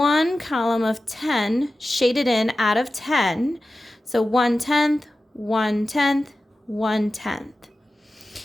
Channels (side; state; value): both; normal; correlation 0.94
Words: column of 10 shaded in out of 10. So 1/10, 1/10, 1/10.